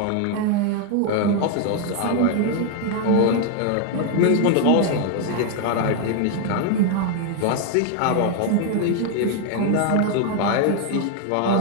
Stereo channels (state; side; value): different; both; correlation 0.00